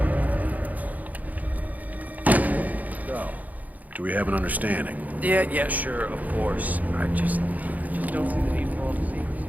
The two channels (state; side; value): late; left; 0.078 ms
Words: Do we have an understanding? Yeah, sure, of course. I just don't see the need for all the secrecy.